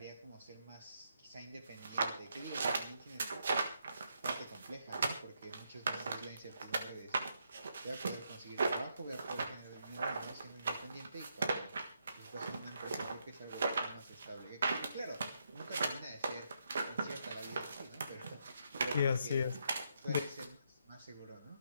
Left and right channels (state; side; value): inverted; both; correlation -0.78